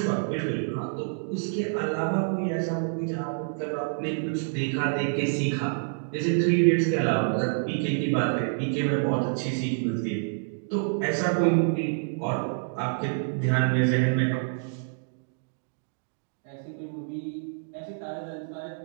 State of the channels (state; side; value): silent; left; digital silence